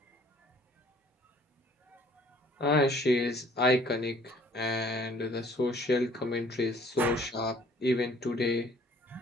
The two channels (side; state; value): both; normal; correlation 0.57